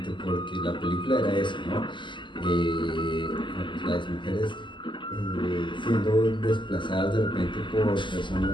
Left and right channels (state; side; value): late; right; 0.24 ms